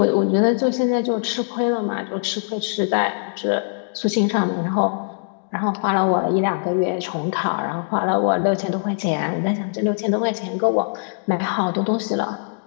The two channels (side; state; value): right; silent; digital silence